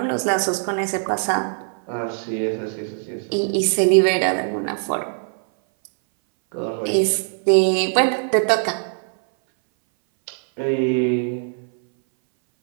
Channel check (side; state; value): left; silent; 61 dB below the other